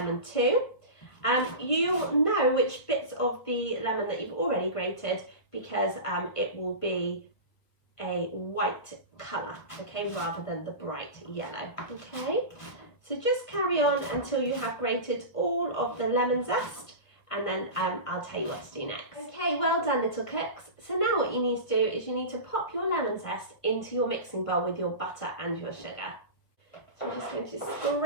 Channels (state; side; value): late; right; 1.4 ms